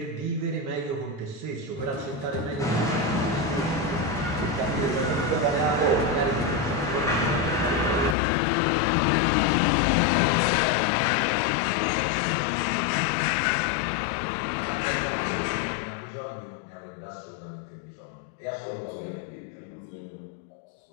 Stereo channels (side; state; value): right; drops out; at 8.2 s